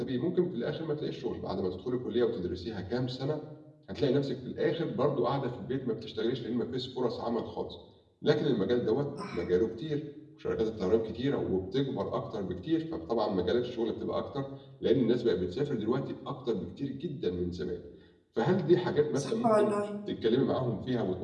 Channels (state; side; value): identical; both; correlation 1.00